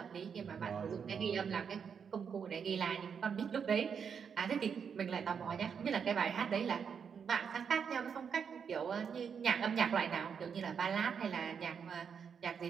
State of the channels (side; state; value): left; quieter; 6.8 dB